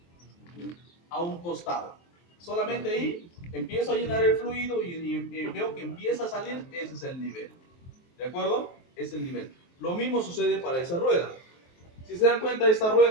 costado. Solamente ahí empiezo a llenar el fluido y veo que empieza a salir, ese es el nivel. ¿De acuerdo? Es el nivel. Lo mismo sucede para esa rueda. Si se dan cuenta, esta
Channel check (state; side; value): late; right; 23 ms